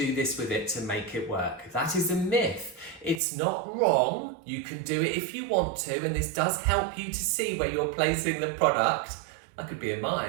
this with it to make it work. That is a myth. It's not wrong. You can do it if you want to, and this does help you to see where you're placing the product. That could be a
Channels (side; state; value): left; drops out; at 3.2 s